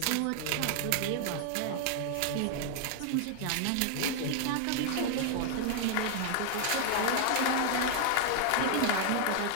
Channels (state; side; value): different; both; correlation 0.00